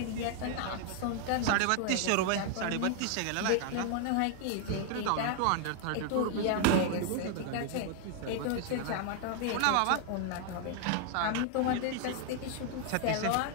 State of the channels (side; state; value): both; different; correlation 0.00